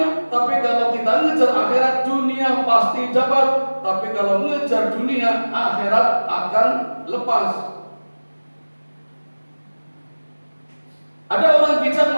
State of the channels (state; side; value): inverted; both; correlation -1.00